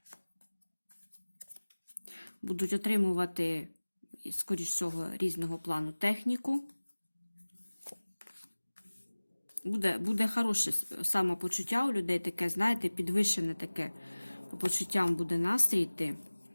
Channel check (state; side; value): inverted; both; correlation -1.00